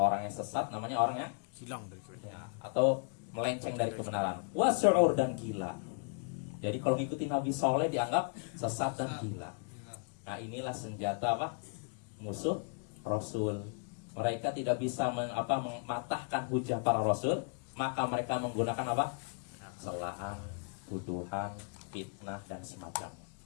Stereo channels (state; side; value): quieter; right; 39.8 dB